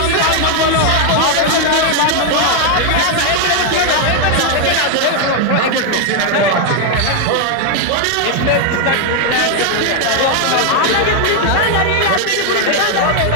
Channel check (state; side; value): different; both; correlation 0.01